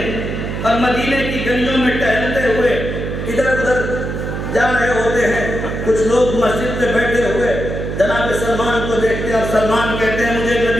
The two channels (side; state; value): right; noise; hum, 4 dB below the sound